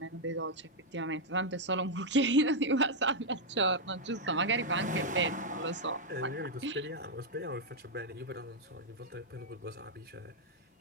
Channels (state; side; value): normal; both; correlation -0.02